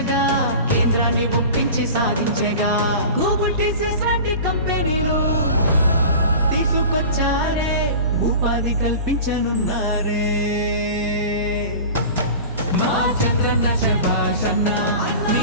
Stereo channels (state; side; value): inverted; both; correlation -0.36